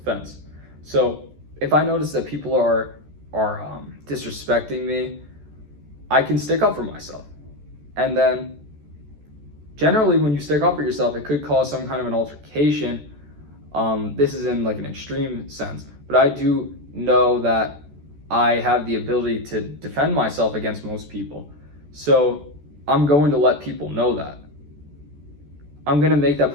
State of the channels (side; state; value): left; late; 14 ms